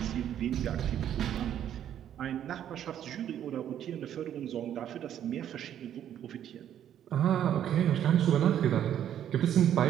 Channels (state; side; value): quieter; left; 10.3 dB